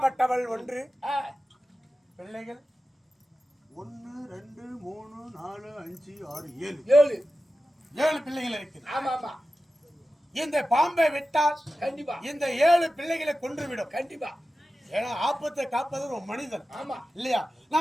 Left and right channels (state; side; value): normal; both; correlation 0.94